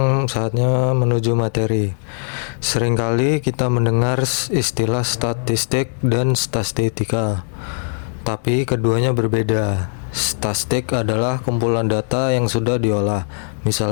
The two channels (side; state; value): right; silent; digital silence